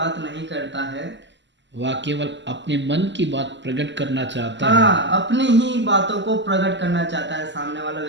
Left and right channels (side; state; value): left; late; 0.53 ms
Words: नहीं करता है, वह केवल अपने मन की बात प्रकट करना चाहता है। हाँ, अपनी ही बातों को प्रकट करना चाहता है सामने वाला